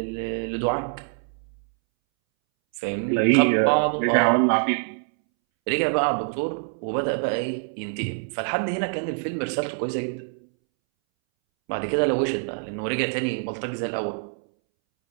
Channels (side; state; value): left; silent; 62 dB below the other